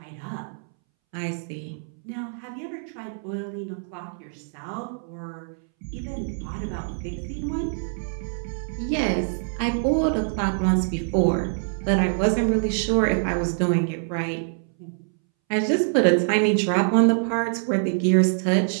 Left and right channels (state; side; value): silent; left; 62 dB below the other